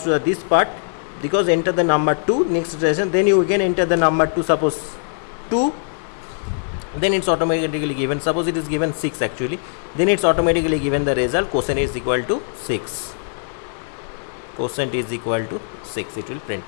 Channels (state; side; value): silent; right; digital silence